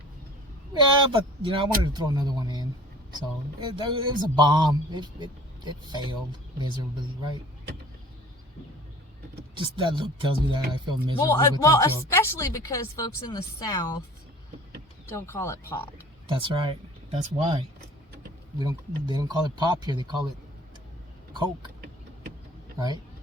Yeah, but I wanted to throw another one in, so it was a bomb. It failed miserably, right? Just that look tells me that I feel miserable. Well, especially because folks in the South don't call it pop. That's right. That's why. They don't call it pop here. They call it Coke, right?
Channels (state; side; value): normal; both; correlation 0.46